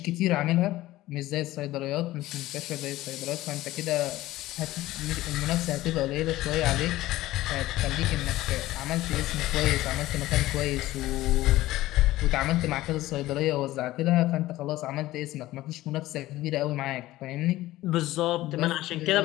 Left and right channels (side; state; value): right; quieter; 16.5 dB